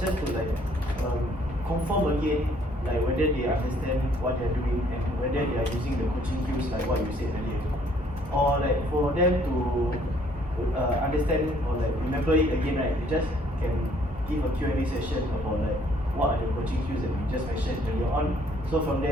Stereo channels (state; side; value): normal; both; correlation 0.63